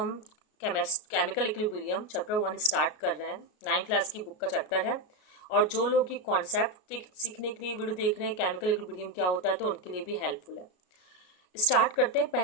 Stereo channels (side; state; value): right; late; 33 ms